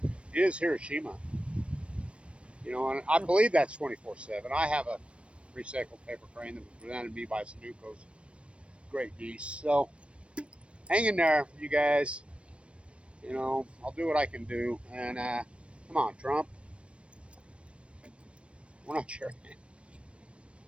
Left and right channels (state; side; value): late; left; 0.060 ms